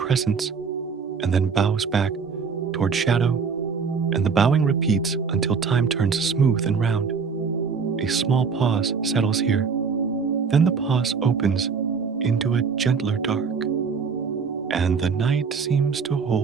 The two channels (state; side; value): quieter; left; 5.6 dB